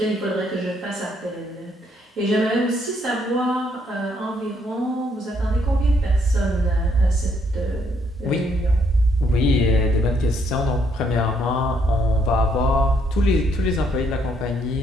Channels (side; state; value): both; normal; correlation 0.71